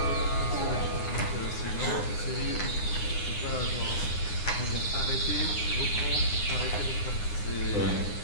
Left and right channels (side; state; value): right; late; 9.7 ms